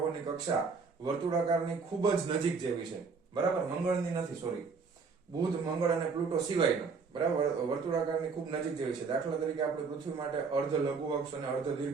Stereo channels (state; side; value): quieter; left; 5.0 dB